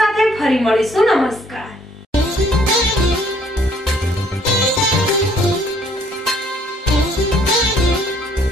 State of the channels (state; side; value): normal; both; correlation 0.63